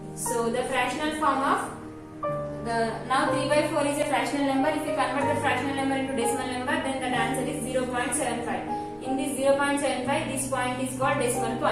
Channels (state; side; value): identical; both; correlation 1.00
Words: So the fractional form of now 3 by 4 is a fractional number. If you convert the fractional number into decimal number, then the answer is 0.75. In this 0.75, this point is called decimal